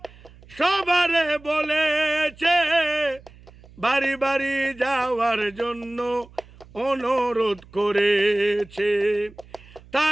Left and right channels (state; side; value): noise; right; hum, 23 dB below the sound